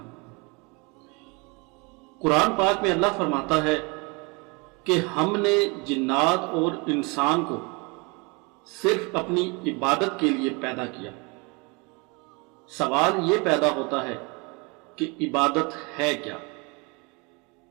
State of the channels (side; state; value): left; quieter; 29.2 dB